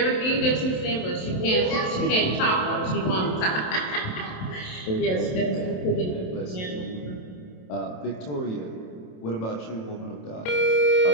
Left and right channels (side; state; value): right; late; 27 ms